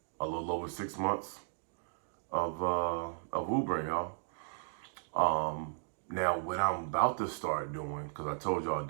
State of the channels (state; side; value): silent; left; digital silence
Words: little over 6 months of Ubering, y'all. Now what I'm about to start doing, because I told y'all